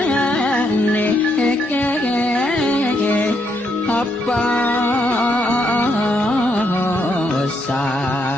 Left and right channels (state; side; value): normal; both; correlation 0.76